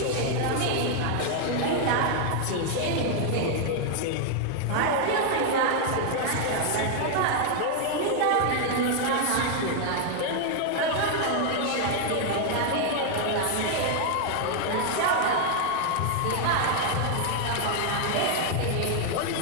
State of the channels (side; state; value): both; different; correlation 0.00